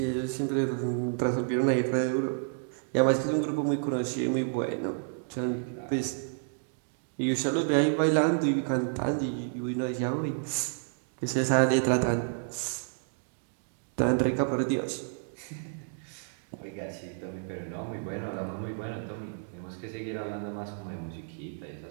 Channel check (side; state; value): left; silent; digital silence